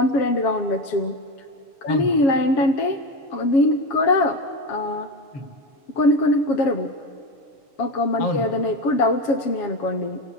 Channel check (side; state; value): right; late; 7.4 ms